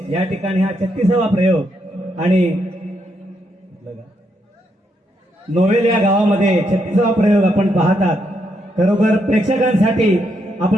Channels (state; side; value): normal; both; correlation 0.78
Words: या ठिकाणी हा 36वा प्रयोग आणि नोवेल या गावामध्ये 36वा प्रयोग आपण पाहतात. खरोखर प्रेक्षकांसाठी